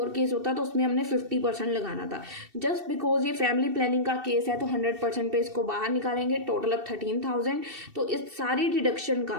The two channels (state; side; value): late; left; 2.7 ms